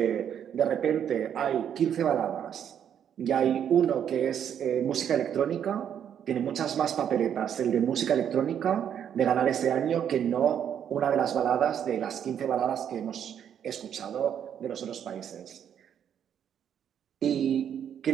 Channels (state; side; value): quieter; left; 9.0 dB